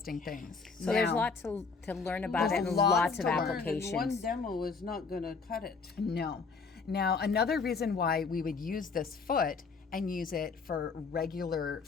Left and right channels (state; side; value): quieter; right; 4.8 dB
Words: things. So there's lots to learn about it, and There's lots of lots to learn. applications. One demo is not going to cut it. No. Now, another reason why we would use this foot and use it for regular